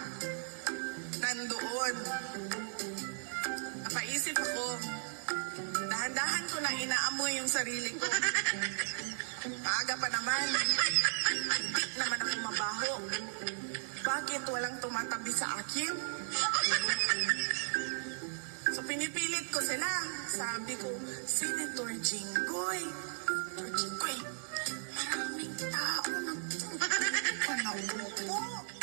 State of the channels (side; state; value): left; silent; 54 dB below the other